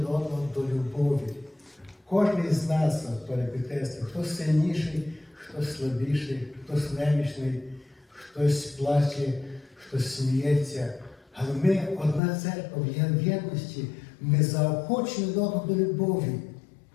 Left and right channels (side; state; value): right; drops out; at 12.2 s